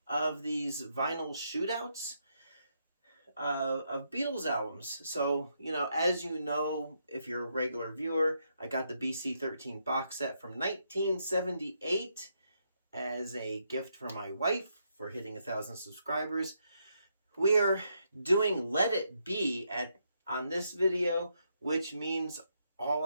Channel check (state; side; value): inverted; both; correlation -0.78